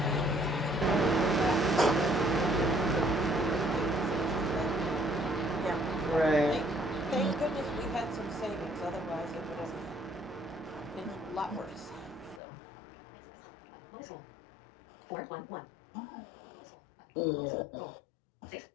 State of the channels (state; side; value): drops out; right; at 12.4 s